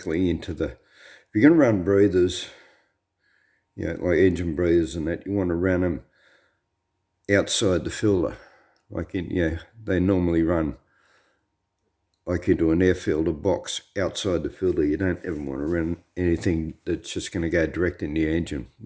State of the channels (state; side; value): identical; both; correlation 1.00